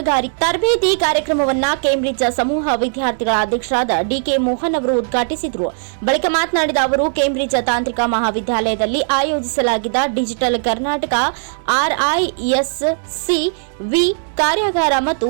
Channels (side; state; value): left; silent; 67 dB below the other